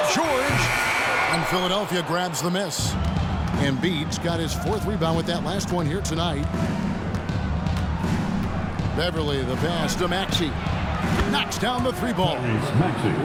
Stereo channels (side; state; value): both; identical; correlation 1.00